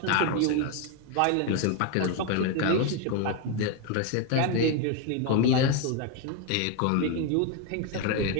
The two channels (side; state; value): both; different; correlation 0.02